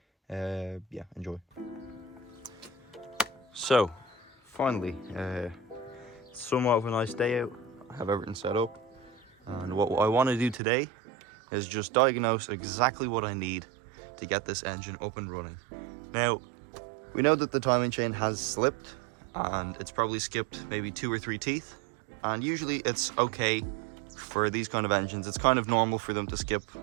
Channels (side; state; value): left; drops out; at 10.6 s